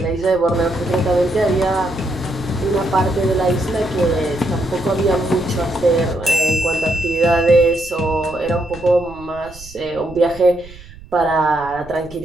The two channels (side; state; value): right; noise; rumble, 19 dB below the sound